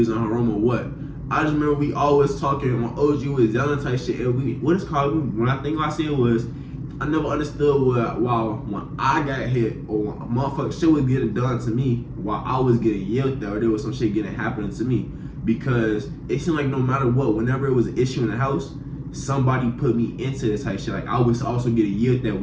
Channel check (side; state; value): both; identical; correlation 1.00